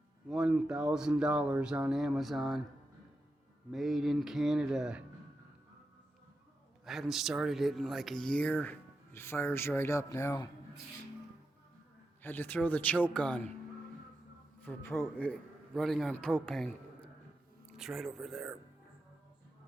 $1,000 on Amazon. Made in Canada. I haven't started it in like a year. It fires right up now. Had to throw the choke on for running on propane. It's right over there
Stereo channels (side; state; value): both; normal; correlation 0.88